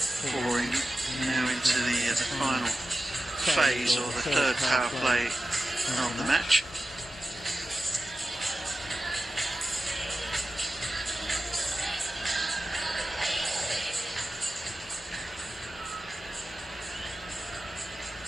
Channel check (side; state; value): both; normal; correlation 0.93